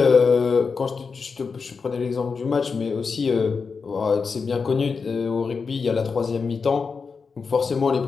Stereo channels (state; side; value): quieter; right; 5.1 dB